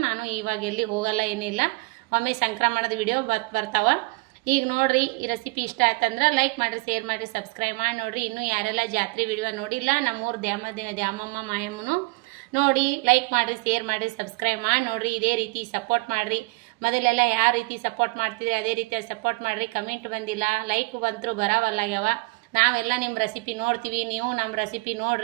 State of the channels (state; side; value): quieter; left; 26.6 dB